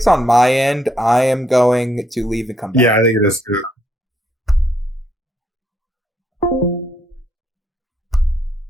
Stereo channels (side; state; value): both; normal; correlation 0.74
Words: on my end. I am going to leave and come back. Yeah, I think it is too.